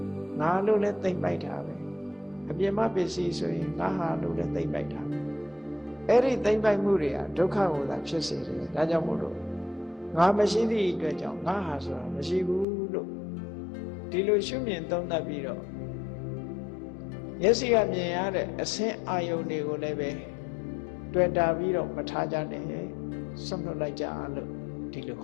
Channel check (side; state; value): right; drops out; at 12.7 s